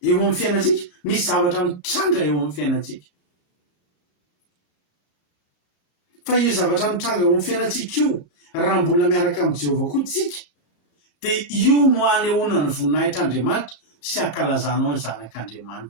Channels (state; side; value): late; right; 34 ms